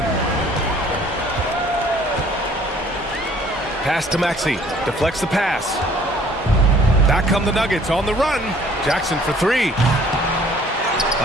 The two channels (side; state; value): both; normal; correlation 0.56